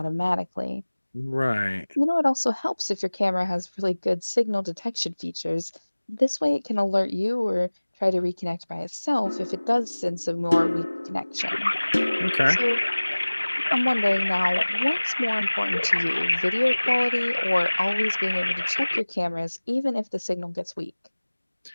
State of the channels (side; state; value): both; inverted; correlation -1.00